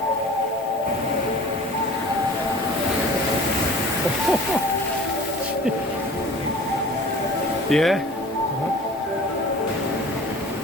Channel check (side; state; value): both; normal; correlation 0.44